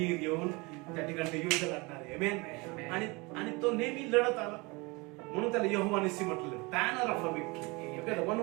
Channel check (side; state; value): left; quieter; 26.0 dB